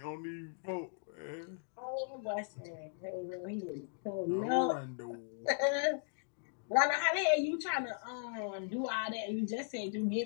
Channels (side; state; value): right; silent; digital silence